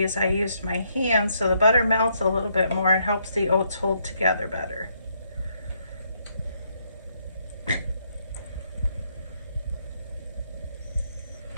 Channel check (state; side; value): inverted; both; correlation -0.74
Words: I used my hand, so the butter melts a little bit more and helps the oats hold together better.